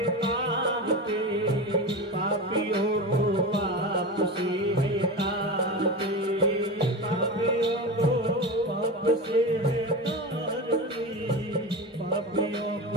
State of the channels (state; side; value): normal; both; correlation 0.24